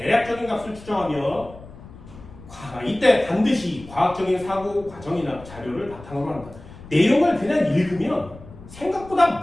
값을 추정하며 이때 반드시 과학적인 사고 과정이나 자료를 바탕으로 한다. 내용을 그냥 읽으면 생각보다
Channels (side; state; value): left; noise; rumble, 18 dB below the sound